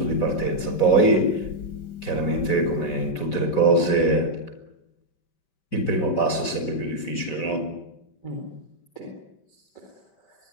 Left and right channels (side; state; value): right; late; 5.2 ms